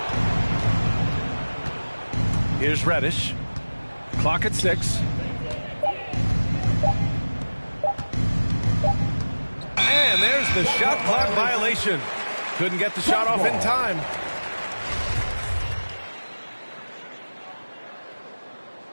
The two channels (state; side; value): inverted; both; correlation -1.00